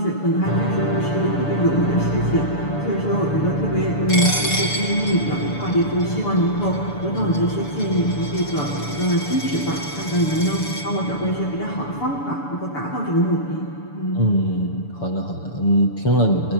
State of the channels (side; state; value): right; late; 6.9 ms